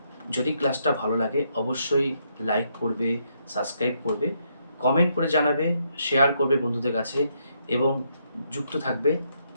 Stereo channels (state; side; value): inverted; both; correlation -0.76